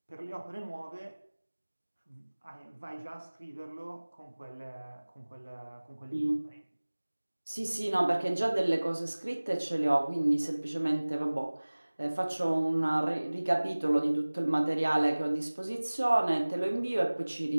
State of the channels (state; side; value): inverted; both; correlation -1.00